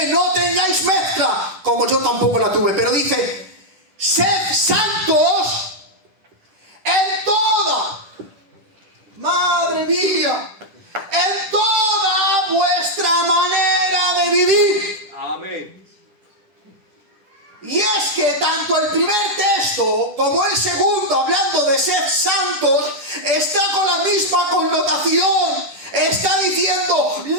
No tengáis mezcla como yo tampoco la tuve. Pero dice: sed santos en toda, madre mía, en toda vuestra manera de vivir. Amén. Y es que tanto el primer texto como el segundo, hablando de ser santos, está con la misma connotación. Está diciendo:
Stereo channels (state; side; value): late; left; 10 ms